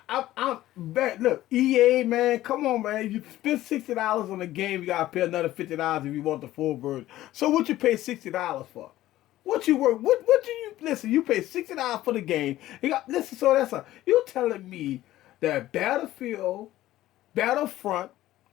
I'm back. Look, EA, man, come on, man. You spend $60 on the game, you gotta pay another $50 if you want the full version. So what you pay $60 for? What you work? What do you listen? You pay $60 for the game. You got listen. So you telling me that Battlefront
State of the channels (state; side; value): quieter; right; 15.0 dB